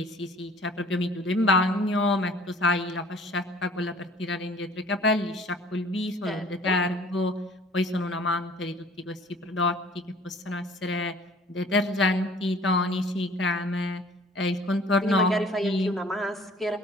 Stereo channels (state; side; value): normal; both; correlation 0.51